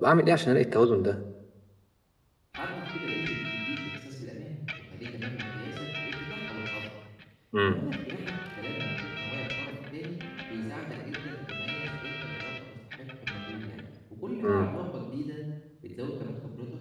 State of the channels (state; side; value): identical; both; correlation 1.00